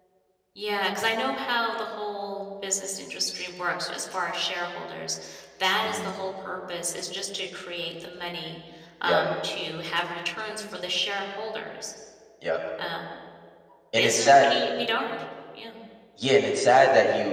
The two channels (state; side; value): identical; both; correlation 1.00